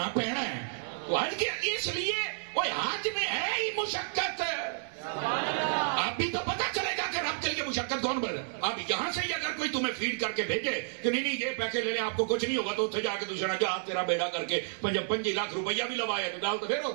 پینا ہے. تو حج کے اس لیے وہ حج میں ہے ہی مشقت. اب بھی تو پتہ چلے گا کہ رب کے لیے مشقت کون بڑھ. اب یہاں سے ہی اگر کوئی تمہیں فیڈ کر کے بھیجے کہ نہیں یہ پیسے لے لیں آپ کو کچھ نہیں ہوگا، تو اتنے جا کے دوسرا جا تیرا بیڑا کر کے 25 لاکھ روپیہ بھی لوایا تو گل تو پھر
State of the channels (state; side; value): silent; left; 57 dB below the other